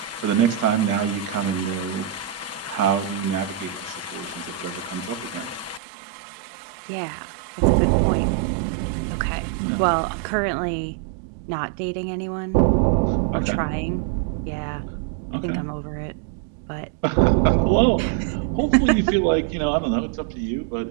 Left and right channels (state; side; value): drops out; left; at 5.8 s